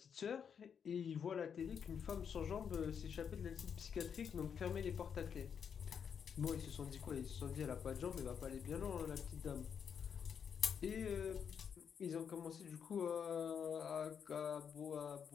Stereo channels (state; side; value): quieter; right; 7.3 dB